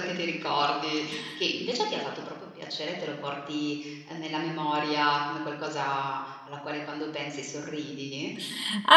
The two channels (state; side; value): identical; both; correlation 1.00